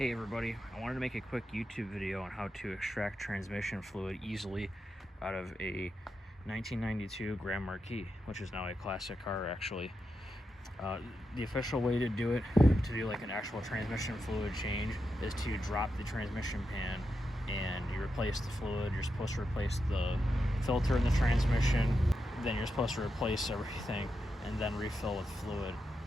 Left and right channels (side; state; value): both; normal; correlation 0.87